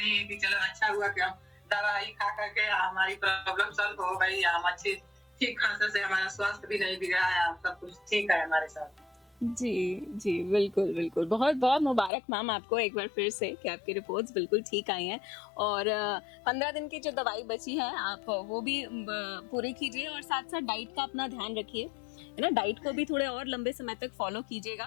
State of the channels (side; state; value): right; drops out; at 12.1 s